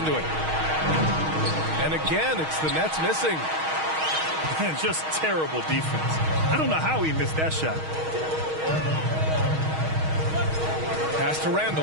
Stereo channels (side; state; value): left; late; 6.4 ms